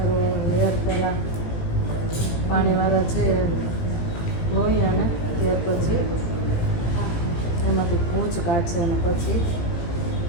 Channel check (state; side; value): late; right; 18 ms